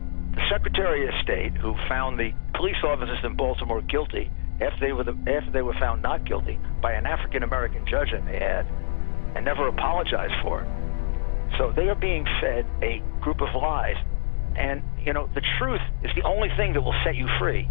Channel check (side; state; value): right; silent; digital silence